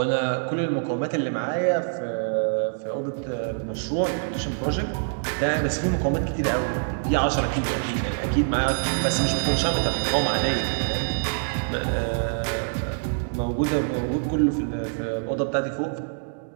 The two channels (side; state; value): left; silent; digital silence